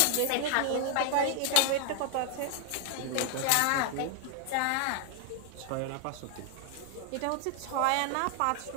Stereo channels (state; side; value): different; both; correlation 0.00